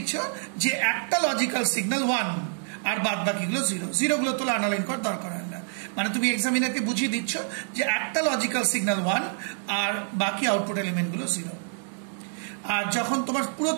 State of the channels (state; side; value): silent; left; 60 dB below the other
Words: যে একটা লজিক্যাল সিগন্যাল 1 আর বাদ বাকিগুলো 0, 0 গুলো তোলা আন্ডারলাইন করার দরকার হয় না। মানে তুমি এক্সামিনারকে বুঝিয়ে দিচ্ছ যে একটা লজিক্যাল সিগন্যাল 1 আর বাকি আউটপুট এলিমেন্টগুলো 0। আর যখন তোমার পুরো